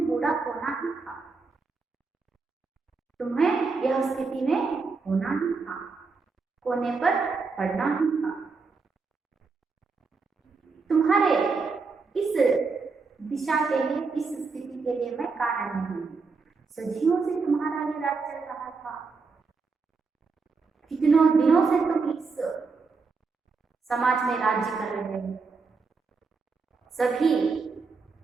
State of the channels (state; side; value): quieter; left; 4.5 dB